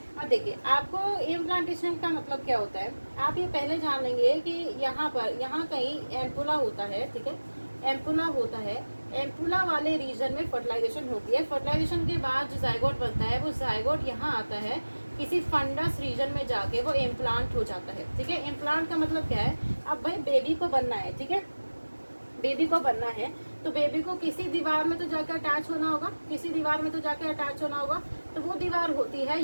अब देखिए आपको इम्प्लांटेशन का मतलब क्या होता है, आप ये पहले जान लेंगे कि यहाँ कहीं एम्पुला होता है, ठीक है। एम्पुला होता है, एम्पुला वाले रीजन में फर्टिलाइजेशन होती है। फर्टिलाइजेशन के बाद जो जाइगोट बनता है, वो जाइगोट यहाँ आता है, किसी फंडस रीजन में जाके वो इम्प्लांट हो जाता है, ठीक है। इम्प्लांट का मतलब क्या है? अब भाई बेबी को बनना है, ठीक है। बेबी को बनना है तो बेबी को किसी दीवार में तो जाकर अटैच होना होगा, तो वो दीवार होती है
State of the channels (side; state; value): both; inverted; correlation -1.00